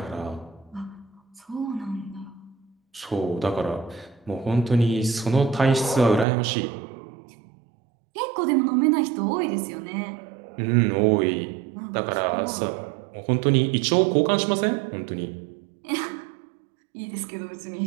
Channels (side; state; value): left; drops out; at 6.2 s